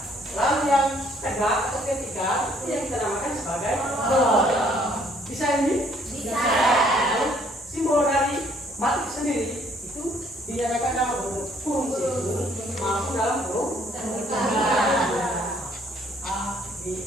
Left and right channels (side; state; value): both; normal; correlation 0.63